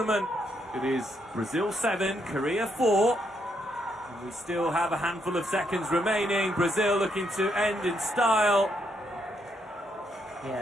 It is Brazil 7, Korea 4. And we still have a handful of seconds remaining. Brazil looking to end in style.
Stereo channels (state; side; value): normal; both; correlation 0.76